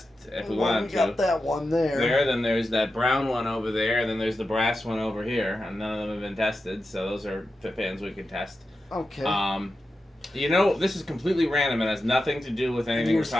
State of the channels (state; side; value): normal; both; correlation 0.90